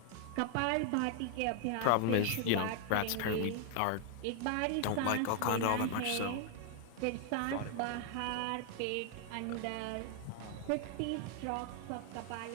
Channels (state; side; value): different; both; correlation 0.00